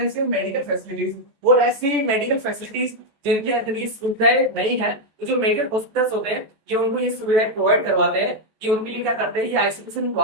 medical facilities, और ऐसी मेडिकल फैसिलिटीज जिनके अंदर ये सुविधाएं नहीं है, तो जो मेजर हॉस्पिटल्स होते हैं ये उनको ये सुविधाएं प्रोवाइड करवाते हैं। ये उनके लिए क्या करते हैं, ये आइसोलेशन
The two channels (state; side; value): late; left; 13 ms